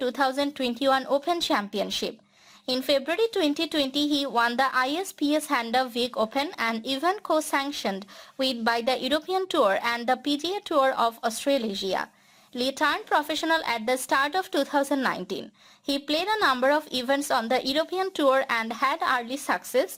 Open Championship. In February 2020, he won the ISPS Handa Week Open, an event co-sanctioned by the European Tour and the PGA Tour of Australasia. Lee turned professional at the start of 2019. He played a number of events on the European Tour and had early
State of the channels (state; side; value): identical; both; correlation 1.00